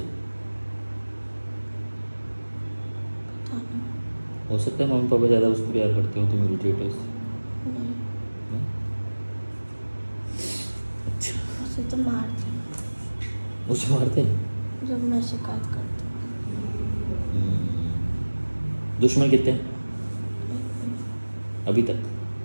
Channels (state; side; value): inverted; both; correlation -1.00